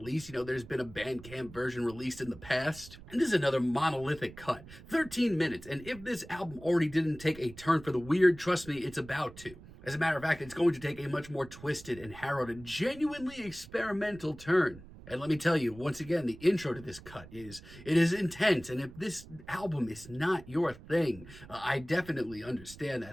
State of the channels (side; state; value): right; noise; rumble, 18 dB below the sound